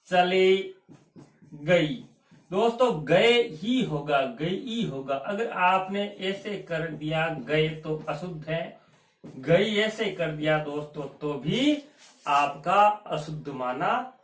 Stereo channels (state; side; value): identical; both; correlation 1.00